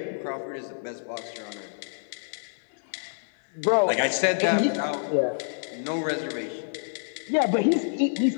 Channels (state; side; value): silent; right; 60 dB below the other